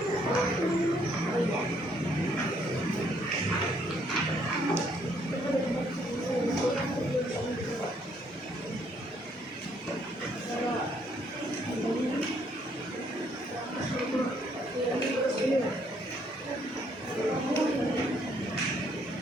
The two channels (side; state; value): both; normal; correlation 0.68